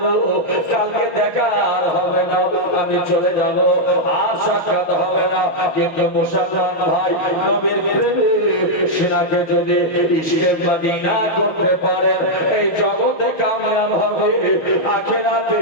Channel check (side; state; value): right; late; 6.0 ms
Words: কালকে দেখা আর হবে না আমি চলে যাব আর সাক্ষাৎ হবে না কিন্তু মুসলমান ভাই নবীর প্রেমে সিনাকে যদি ইশকে মদিনা করতে পারে এই জগতে কামিয়াব হবে আখিরাতে